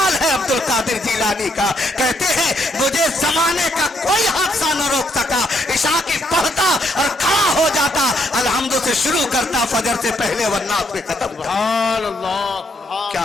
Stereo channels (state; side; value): normal; both; correlation 0.74